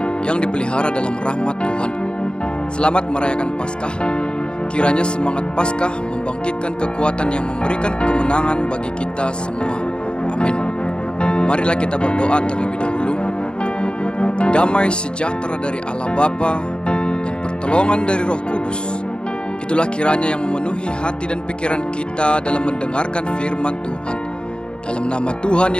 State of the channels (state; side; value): late; right; 0.051 ms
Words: yang dipelihara dalam rahmat Tuhan. Selamat merayakan Paskah. Kiranya semangat Paskah membangkitkan kekuatan yang memberikan kemenangan bagi kita semua. Amin. Marilah kita berdoa terlebih dahulu. Damai sejahtera dari Allah Bapa dan pertolongan dari Roh Kudus, itulah kiranya yang memenuhi hati dan pikiran kita dalam mendengarkan firman Tuhan. Dalam nama Tuhan